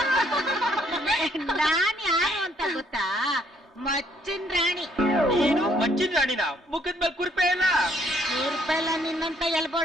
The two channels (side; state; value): both; normal; correlation 0.67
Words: ನಾನ್ ಯಾರು ಅಂತ ಗೊತ್ತಾ? ಮಚ್ಚಿನ ರಾಣಿ. ನೀನು ಮಚ್ಚಿನ ರಾಣಿನ? ಮುಖದ ಮೇಲೆ ಕುರ್ಪೆ ಇಲ್ಲ. ಕುರ್ಪೆಲ್ಲ ನಿನ್ನಂತ